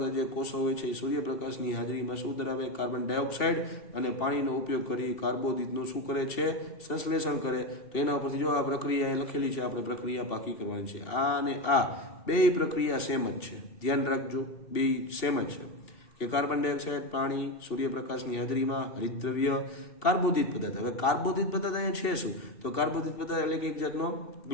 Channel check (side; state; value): right; late; 2.7 ms